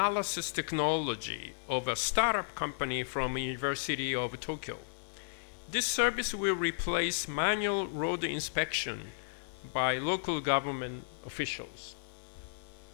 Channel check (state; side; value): silent; right; 55 dB below the other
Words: technology of a startup company from University of Tokyo. This service will replace manual road inspection by local government officials.